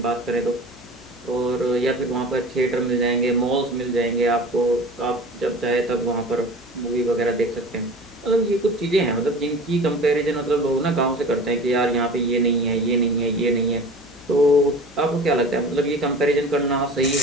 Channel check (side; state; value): left; noise; hum, 26 dB below the sound